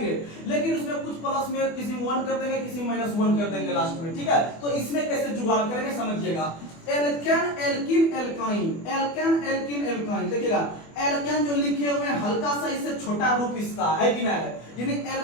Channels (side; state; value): right; late; 24 ms